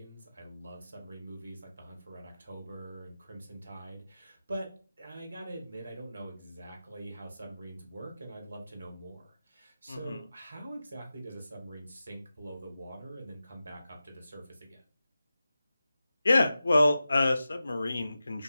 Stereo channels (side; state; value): both; inverted; correlation -0.94